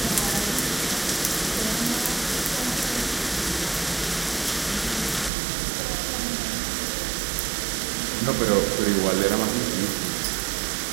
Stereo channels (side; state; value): left; drops out; at 5.3 s